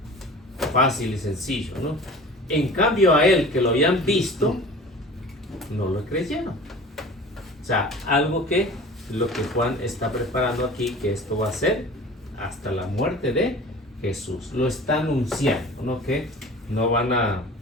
Fácil y sencillo, ¿no? En cambio a él, que lo habían visto, no lo creyeron. O sea, algo que lo que Juan está preparando aquí, que esto va a ser hasta la muerte de Jesús. Lo está anunciando, ¿no? Que no van a,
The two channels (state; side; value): normal; both; correlation 0.40